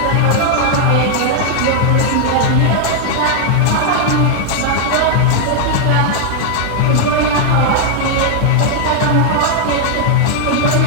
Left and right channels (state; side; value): different; both; correlation 0.00